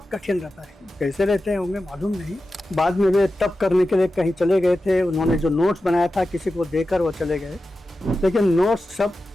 कठिन रहता है। कैसे रहते होंगे मालूम नहीं। बाद में वे तप करने के लिए कहीं चले गए थे, उन्होंने जो नोट्स बनाया था किसी को देकर वो चले गए, लेकिन नोट्स सब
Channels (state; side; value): normal; both; correlation 0.93